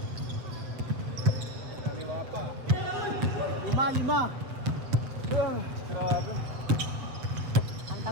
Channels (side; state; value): left; late; 7.6 ms